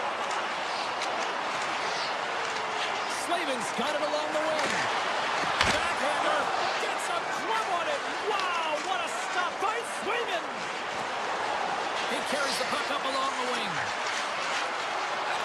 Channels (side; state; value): both; identical; correlation 1.00